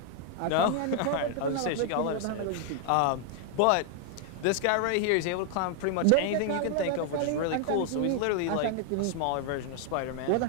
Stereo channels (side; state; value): both; different; correlation 0.00